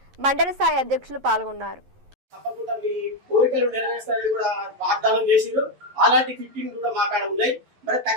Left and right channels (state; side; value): late; left; 11 ms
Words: మండల స్థాయి అధ్యక్షులు పాల్గొన్నారు. తప్పకుండా మీ కోరికలు నెరవేర్స్తారని కూడా వాగ్దానం చేసిరు. అలాంటి ఫిట్టింగ్ కూడా మా కాడ ఉన్నాయి. మరి